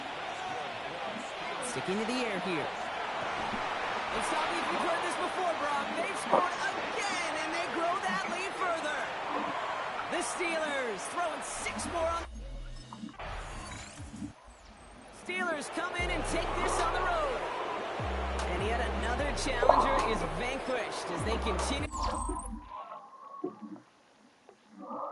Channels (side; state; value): both; identical; correlation 1.00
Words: Sticking to the air here. It's not if you've heard this before, Brock. They've scored again, and they grow that lead further. The Steelers throwing 6 more on. Steelers come in and take this on the road. And yet another challenger is vanquished as they continue.